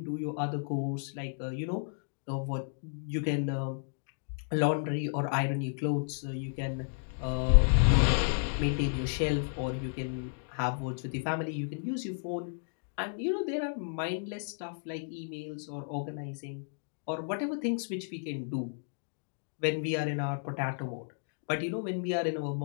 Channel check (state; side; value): silent; right; digital silence